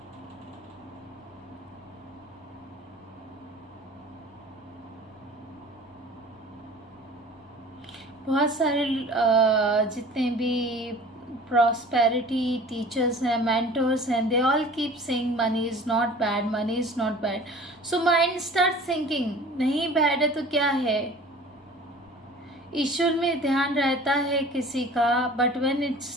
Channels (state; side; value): normal; both; correlation 0.44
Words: बहुत सारे जितने भी प्रॉस्पेरिटी टीचर्स हैं, मेंटर्स हैं, they all keep saying money is not bad, money is not bad. So mind start thinking नहीं बैड है तो क्या है? ईश्वर में ध्यान रहता है किसी का, but when it